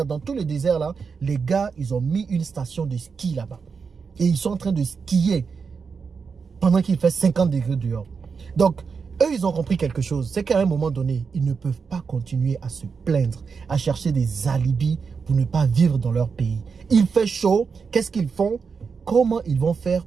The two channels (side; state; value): left; quieter; 5.5 dB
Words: dans tous les déserts là, les gars, ils ont mis une station de ski là-bas. Et ils sont en train de skier pendant qu'il fait 50 degrés dehors. Donc, eux, ils ont compris quelque chose. C'est qu'à un moment donné, ils ne peuvent pas continuer à se plaindre, à chercher des alibis pour ne pas vivre dans leur pays. Il fait chaud. Qu'est-ce qu'ils font? Comment ils vont faire